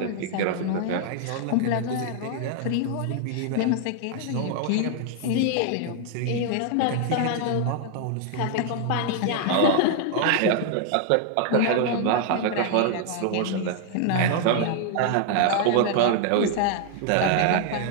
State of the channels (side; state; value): both; different; correlation 0.00